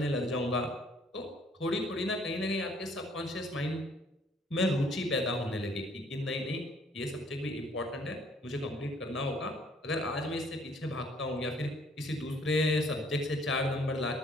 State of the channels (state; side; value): normal; both; correlation 0.61